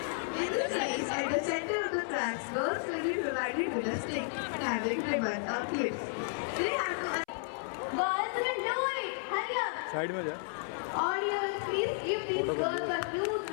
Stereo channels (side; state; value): right; silent; 56 dB below the other